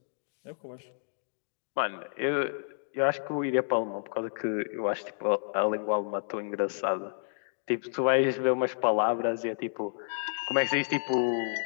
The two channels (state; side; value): silent; right; digital silence